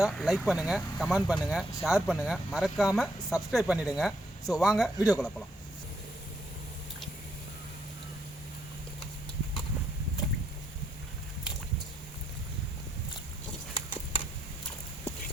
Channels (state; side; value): normal; both; correlation 0.75